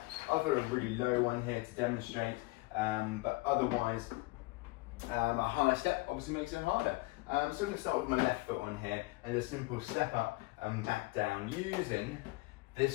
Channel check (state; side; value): quieter; right; 22.8 dB